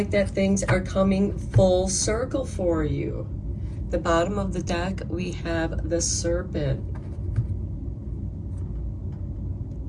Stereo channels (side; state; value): both; identical; correlation 1.00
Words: that things are coming full circle for you. The bottom of the deck, we have the Serpent.